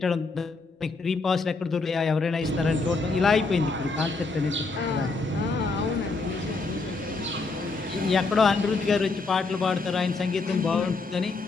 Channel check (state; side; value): quieter; right; 3.9 dB